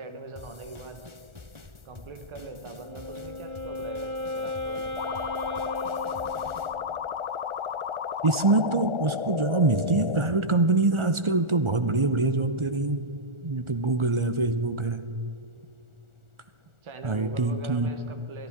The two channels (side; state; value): left; late; 1.4 ms